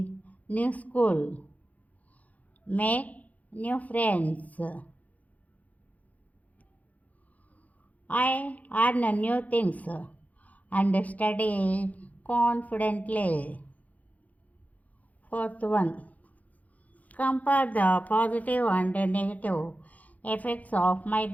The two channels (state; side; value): late; right; 0.075 ms